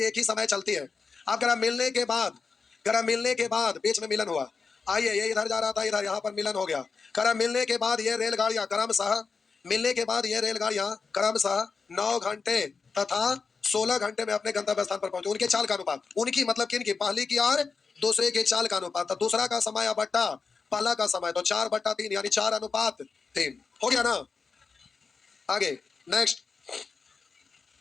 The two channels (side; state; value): right; quieter; 4.9 dB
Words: एक ही समय चलती है। अब करा मिलने के बाद, करा मिलने के बाद बीच में मिलन हुआ। आइए, ये इधर जा रहा था, इधर यहाँ पर मिलन हो गया। करा मिलने के बाद ये रेलगाड़ियां क्रमशः, मिलने के बाद ये रेलगाड़ियां क्रमशः 9 घंटे तथा 16 घंटे में अपने गंतव्य स्थान पर पहुंचे। उनके चाल का अनुपात, उनकी मतलब किनकी, पहली की और दूसरे के चाल का अनुपात। तो दूसरा का समय बट्टा पहला का समय, तो 4/3 यानी 4:3 हो गया ना। आगे नेक्स्ट